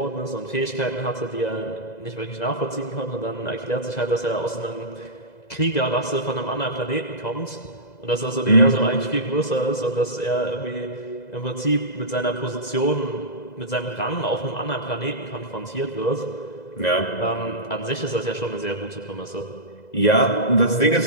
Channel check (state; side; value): late; right; 2.0 ms